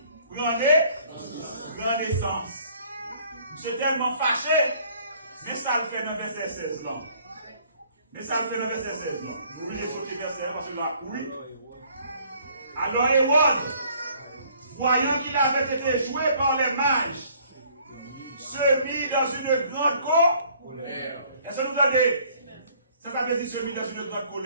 grand naissance. C'est tellement fâché, mais ça le fait dans le verset 16 là. Mais ça le fait dans le verset 16 là. Vous voulez sauter verset parce que là, oui. Alors Hérode, voyant qu'il avait été joué par les mages, se mit dans une grande colère. Est-ce que vous entendez? Ça veut dire se mit dans une grande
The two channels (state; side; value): inverted; both; correlation -0.59